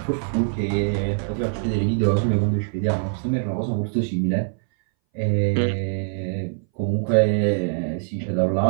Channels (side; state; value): left; silent; 61 dB below the other